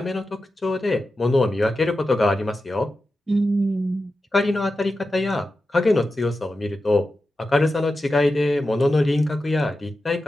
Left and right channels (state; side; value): normal; both; correlation 0.91